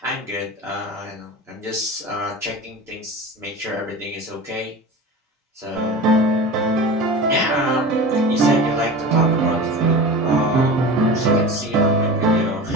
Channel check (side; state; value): both; normal; correlation 0.32